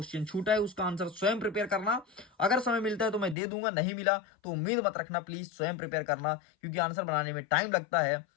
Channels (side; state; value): right; drops out; at 3.4 s